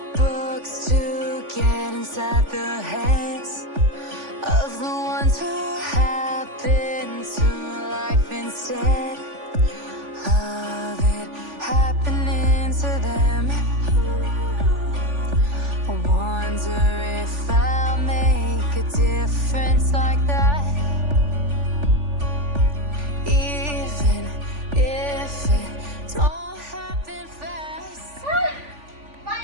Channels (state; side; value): late; left; 3.5 ms